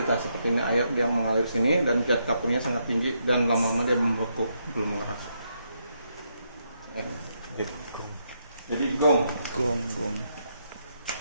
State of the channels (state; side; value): inverted; both; correlation -0.79